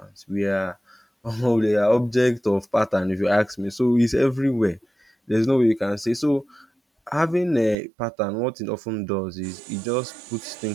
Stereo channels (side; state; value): left; drops out; at 7.8 s